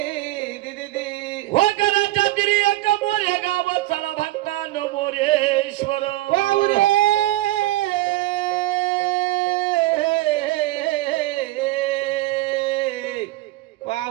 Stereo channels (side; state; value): left; quieter; 17.3 dB